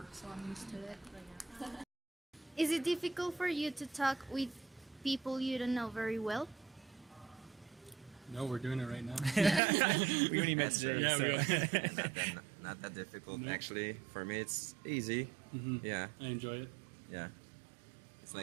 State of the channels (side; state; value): left; drops out; at 9.6 s